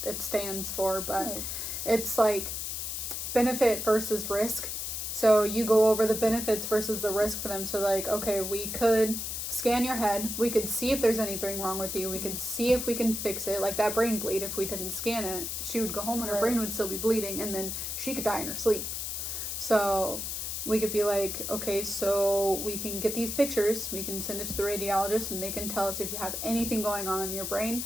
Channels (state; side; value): noise; left; hiss, 4 dB below the sound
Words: it stands for. But it's like benefit versus risk. So you go over the benefits versus the risk for them. So like, okay, we could scan your head. We could see if there's anything wrong with you. We could see if we can fix it. Like that brain bleed, if we didn't scan it, she would go home and her brain would still be bleeding, and then she could die in her sleep. So we could be like, okay, so we can get these pictures, we can send it to the radiologist, and they can tell us if you have anything going on in your brain.